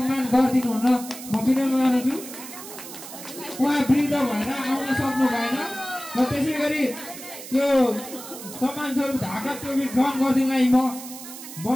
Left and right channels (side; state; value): right; noise; hiss, 13 dB below the sound